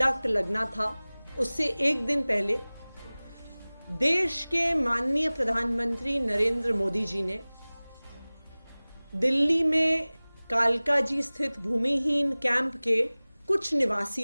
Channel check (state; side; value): inverted; both; correlation -0.99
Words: लगना था, उससे एक दिन पहले देश के माननीय प्रधानमंत्री नरेंद्र मोदी जी ने दिल्ली में कालकाजी स्थित भूमिहीन कैंप के कुछ